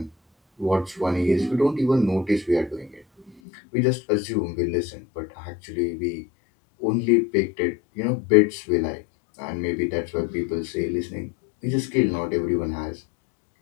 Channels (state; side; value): drops out; right; at 3.4 s